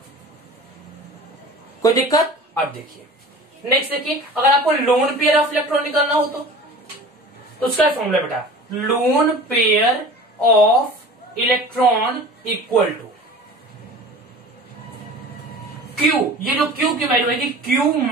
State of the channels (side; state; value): both; normal; correlation 0.39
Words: कोई दिक्कत। अब देखिए नेक्स्ट, देखिए अगर आपको लोन पेयर ऑफ इलेक्ट्रॉन निकालना हो तो उसका फॉर्मूला बेटा, lone pair of electron equal to Q, ये जो क्यू की वैल्यू है Q